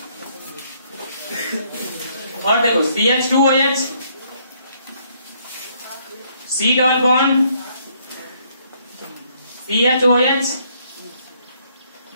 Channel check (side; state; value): both; inverted; correlation -0.68